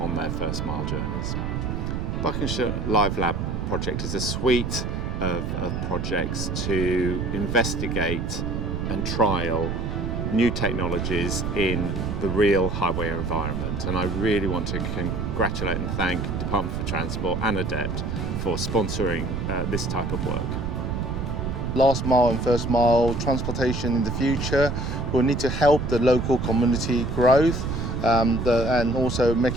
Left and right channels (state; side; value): noise; right; rumble, 3 dB below the sound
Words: their first mile journeys. Buckinghamshire Live Lab project is a suite of projects to investigate and trial new technologies in the real highway environment, and I really want to congratulate and thank Department for Transport and ADEPT for sponsoring this type of work. Last mile and first mile transportation in the future will need to help the local community growth and also